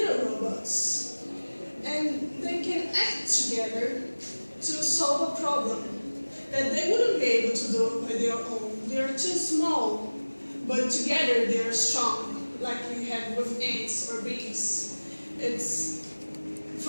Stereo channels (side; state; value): both; inverted; correlation -1.00